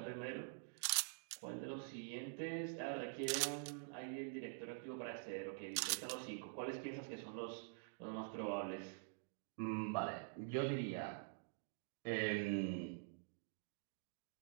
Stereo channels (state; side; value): silent; left; digital silence